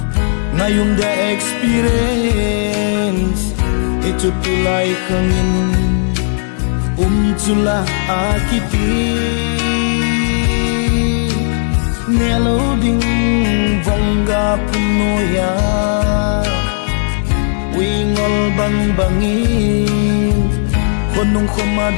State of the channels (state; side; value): silent; right; digital silence